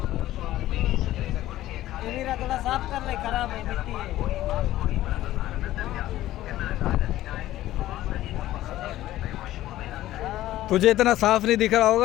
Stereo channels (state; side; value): quieter; right; 14.6 dB